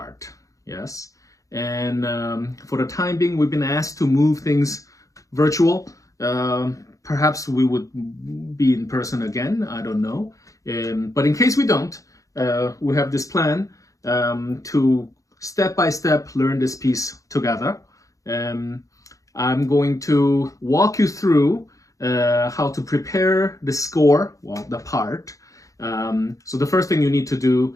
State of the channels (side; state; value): right; late; 0.16 ms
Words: yes? And for the time being, we've been asked to move things virtual. Perhaps we would be in person again, I don't know. But in case we don't, we have this plan to step by step learn this piece together. I'm going to walk you through how to prepare the score, well, the part. So the first thing you need to